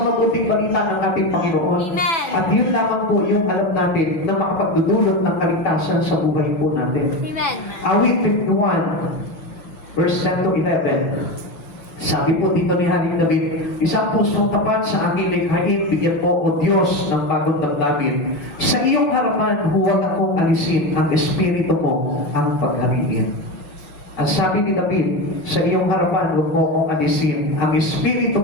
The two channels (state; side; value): late; right; 6.8 ms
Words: mabuting balita ng ating Panginoon. Amen. At yun lamang po yung alam natin na makapagdudulot ng kaligtasan sa buhay po natin. Amen. Awit 51, verse 10 to 11. Sabi po dito ni Haring David, isang pusong tapat sa aking likhain, bigyan mo o Diyos ng bagong damdamin. Sa iyong harapan, huwag akong alisin ang espiritu mo ang paghariin. Ang sabi ni David, sa iyong harapan, huwag mo akong alisin ang espiritu